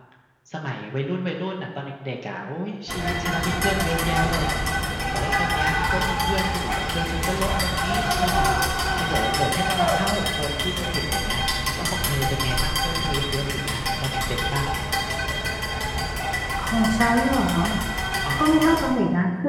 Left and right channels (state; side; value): identical; both; correlation 1.00